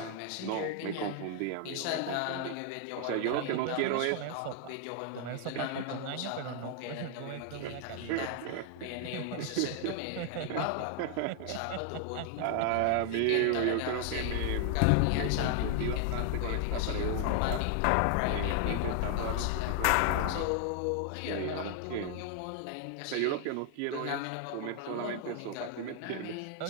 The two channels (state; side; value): different; both; correlation 0.00